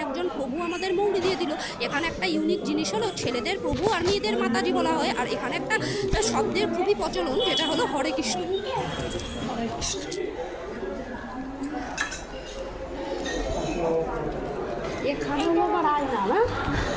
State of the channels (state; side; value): identical; both; correlation 1.00